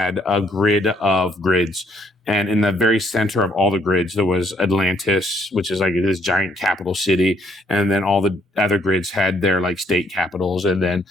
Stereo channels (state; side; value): normal; both; correlation 0.68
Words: a grid of grids. And in the very center of all the grids, there was Atlantis, which is like this giant capital city. And then all the other grids had their like state capitals. And then